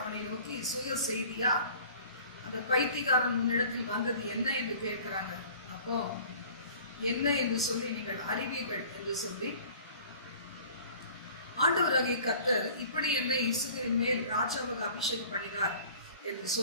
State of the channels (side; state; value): both; inverted; correlation -0.47